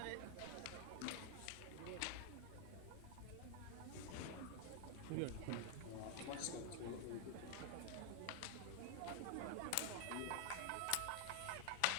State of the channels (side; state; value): both; different; correlation 0.00